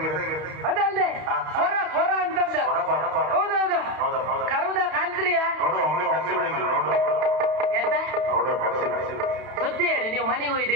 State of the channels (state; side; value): late; left; 32 ms